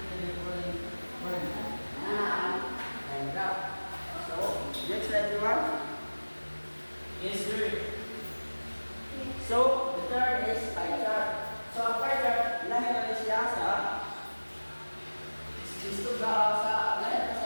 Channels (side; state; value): both; inverted; correlation -1.00